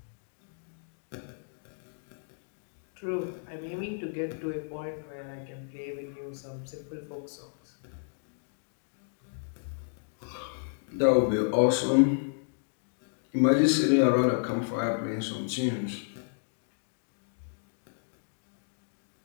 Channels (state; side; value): silent; right; digital silence